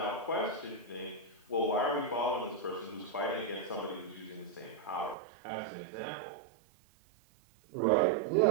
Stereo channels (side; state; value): left; drops out; at 5.2 s